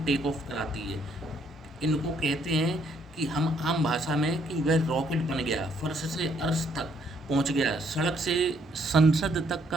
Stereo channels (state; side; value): normal; both; correlation 0.68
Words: टेक ऑफ कराती है। इनको कहते हैं कि हम आम भाषा में कि वह रॉकेट बन गया, फर्श से अर्श तक पहुंच गया, सड़क से संसद तक